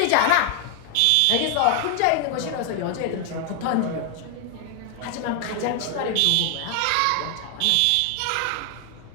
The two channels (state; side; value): different; both; correlation 0.00